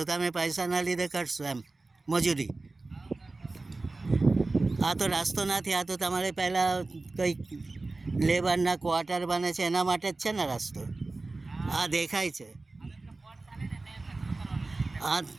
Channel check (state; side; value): quieter; left; 3.3 dB